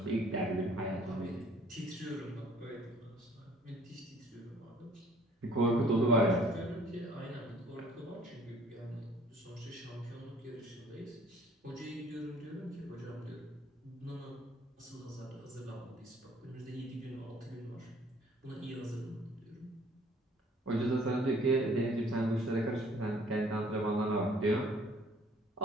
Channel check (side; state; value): both; normal; correlation 0.57